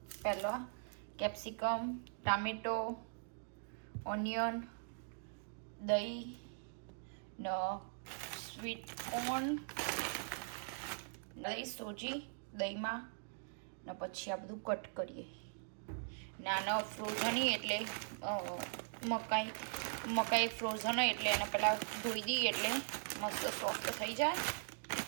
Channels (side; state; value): left; silent; digital silence